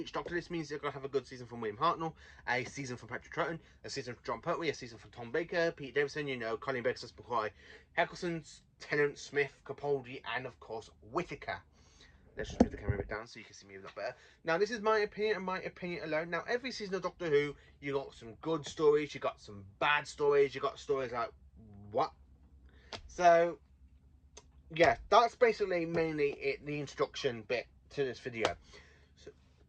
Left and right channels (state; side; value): identical; both; correlation 1.00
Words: Doctor, this means you're going to have a good season from William Hartnell, a season from Patrick Troughton, a season from John Pertwee, a season from Tom Baker, Pete Davidson, Colin Baker, McCoy, Eccleston, Tennant, Smith, Capaldi, and of course, Whittaker. Let's just move the camera a bit down so you can see me a lot better. Now, this is my opinion and my opinion alone. Now, every season of Doctor Who, you got some good stories, you got some bad stories, you got stories like, what? So, yeah, that's basically mainly the introduction bit to this video. So,